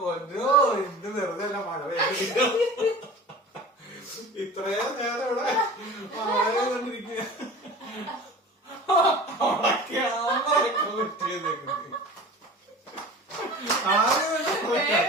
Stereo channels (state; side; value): normal; both; correlation 0.38